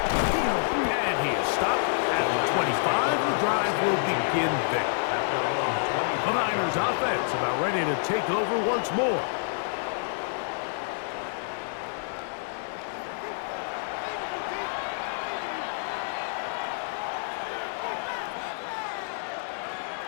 And he is stopped at the 25. The drive will begin there. The Niners offense about ready to take over once more.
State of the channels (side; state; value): right; silent; digital silence